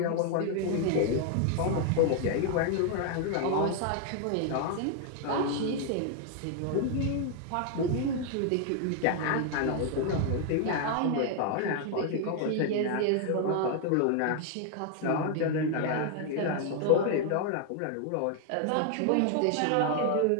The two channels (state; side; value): different; both; correlation 0.00